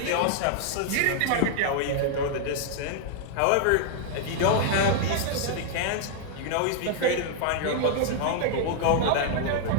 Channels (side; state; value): both; different; correlation 0.00